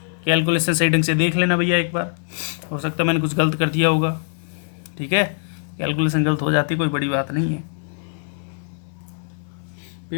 कैलकुलेशन सही ढंग से देख लेना भैया एक बार, हो सकता है मैंने कुछ गलत कर दिया होगा। ठीक है, कैलकुलेशन गलत हो जाती, कोई बड़ी बात नहीं है,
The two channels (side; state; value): right; silent; 59 dB below the other